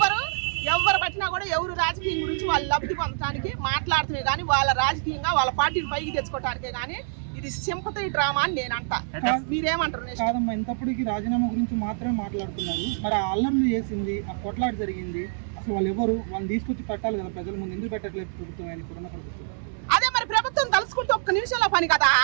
ఎవరు పట్టినా కూడా ఎవరు రాజకీయం గురించి వాళ్ళు లబ్ధి పొందడానికి మాట్లాడుతున్నాయి, కానీ వాళ్ళ రాజకీయంగా వాళ్ళ పార్టీని పైకి తెచ్చుకోవటానికే. కానీ ఇది సింపతి డ్రామా అని నేను అంటా. మీరేమంటారు? కాదమ్మా, ఇంతప్పటికి రాజీనామా గురించి మాత్రమే మాట్లాడుతున్నారు. మరి ఆ అల్లర్లు చేసింది, ఆ కొట్లాట జరిగింది, అసలు వాళ్ళు ఎవరు? వాళ్ళని తీసుకొచ్చి పెట్టాలి కదా ప్రజల ముందు. ఎందుకు పెట్టట్లేదు ప్రభుత్వం? ఆయన ఇప్పుడున్న ప్రభుత్వం అదే మరి ప్రభుత్వం తలుసుకుంటే ఒక్క నిమిషంలో పని కదా,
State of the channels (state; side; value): silent; left; 61 dB below the other